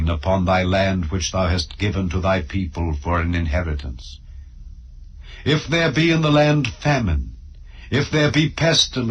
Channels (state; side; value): identical; both; correlation 1.00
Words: upon thy land which thou hast given to thy people for an inheritance. If there be in the land famine, if there be